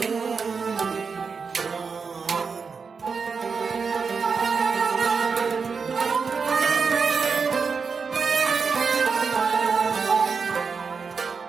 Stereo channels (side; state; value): left; quieter; 5.3 dB